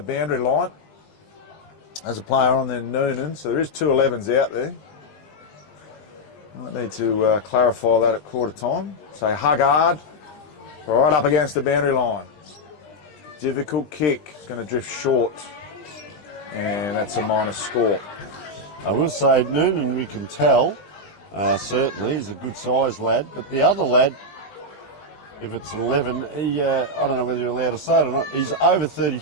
boundary line as a player on there, Noonan. So there is 2 11s out there. Might need to clarify that at quarter time. So Huggard right up against the boundary line. Difficult kick. It's going to drift short. And that's a minus score. I will say Noonan, we can tell, certainly, he's a good sized lad, but the other lad, if it's an 11, he, I don't know whether you're allowed to say it or not, he's over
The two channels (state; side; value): late; right; 20 ms